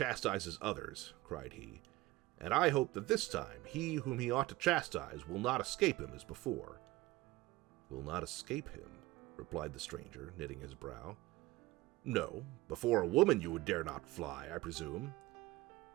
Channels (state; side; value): quieter; left; 18.9 dB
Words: others," cried he, "and I hope that this time he whom he ought to chastise will not escape him as before." "Will not escape him?" replied the stranger, knitting his brow. "No, before a woman you would dare not fly, I presume."